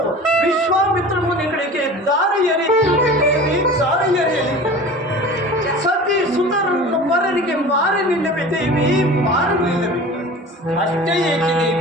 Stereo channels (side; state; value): both; normal; correlation 0.38